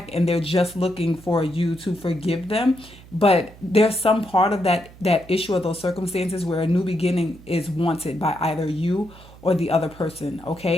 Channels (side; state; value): right; noise; hum, 21 dB below the sound